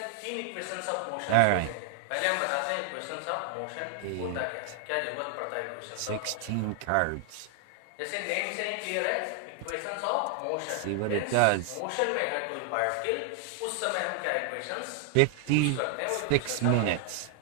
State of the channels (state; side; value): different; both; correlation 0.00